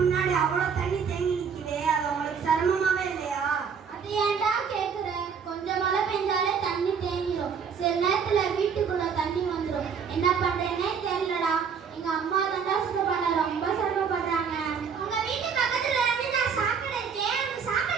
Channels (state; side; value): quieter; left; 6.5 dB